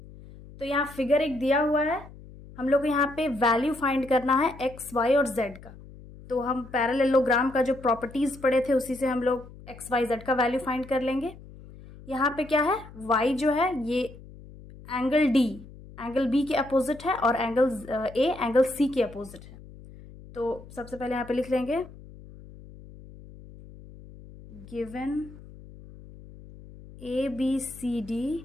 तो यहाँ figure एक दिया हुआ है, हम लोग को यहाँ पे वैल्यू फाइंड करना है X, Y और Z का. तो हम पैरेललोग्राम का जो प्रॉपर्टीज पढ़े थे उसी से हम लोग X, Y, Z का वैल्यू फाइंड कर लेंगे. यहाँ पे क्या है? Y जो है ये एंगल D एंगल B के अपोजिट है और एंगल A एंगल C के अपोजिट है. तो सबसे पहले यहाँ पे लिख लेंगे given ABCD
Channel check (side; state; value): left; noise; hum, 18 dB below the sound